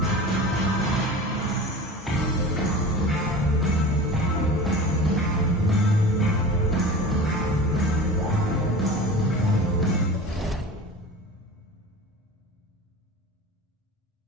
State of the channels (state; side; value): normal; both; correlation 0.35